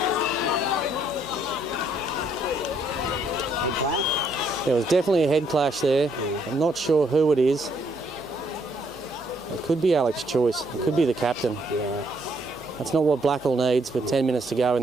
Head clash? There was definitely a head clash there. Yeah. I'm not sure who it is. It could be Alex Choice. It could be the captain. Yeah. That's not what Blackall needs with 10 minutes to go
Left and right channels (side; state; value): both; normal; correlation 0.70